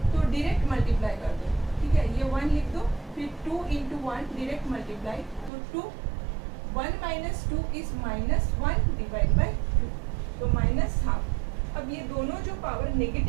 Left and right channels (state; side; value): drops out; left; at 5.5 s